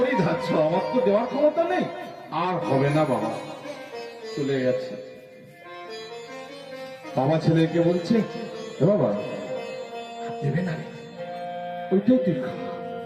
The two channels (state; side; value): identical; both; correlation 1.00